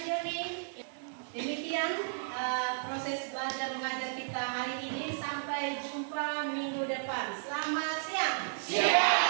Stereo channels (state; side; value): silent; left; digital silence